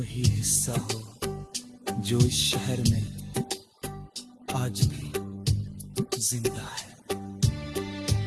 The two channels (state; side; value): identical; both; correlation 1.00